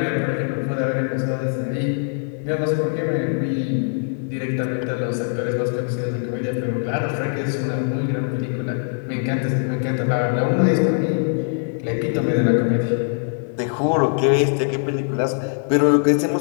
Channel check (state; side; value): silent; right; 64 dB below the other